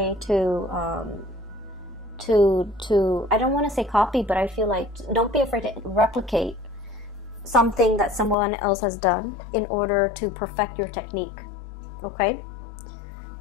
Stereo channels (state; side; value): drops out; right; at 8.3 s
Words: to I don't want to say copy, but I feel like don't be afraid to replicate something that someone else has done in order to perfect your technique. Okay?